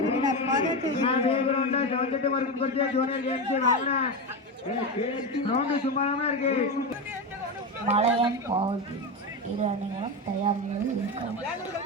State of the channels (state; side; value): normal; both; correlation 0.16